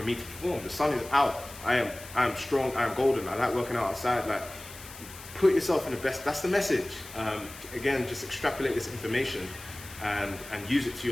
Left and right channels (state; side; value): noise; left; hiss, 16 dB below the sound